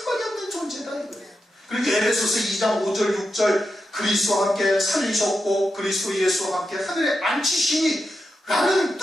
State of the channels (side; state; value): both; normal; correlation 0.88